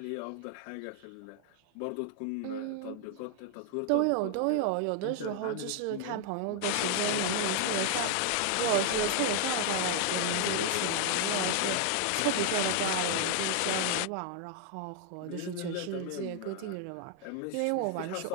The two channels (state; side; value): different; both; correlation 0.00